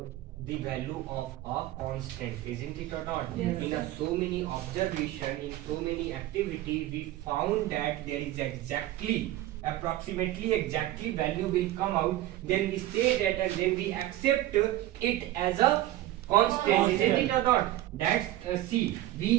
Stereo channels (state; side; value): quieter; left; 14.9 dB